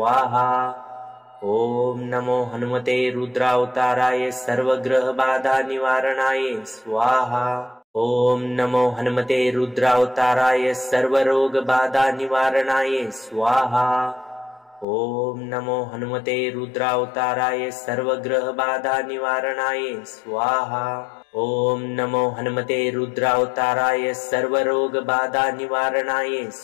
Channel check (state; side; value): drops out; right; at 14.9 s